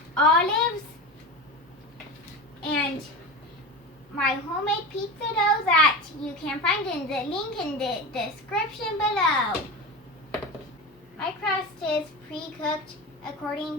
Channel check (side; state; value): both; normal; correlation 0.26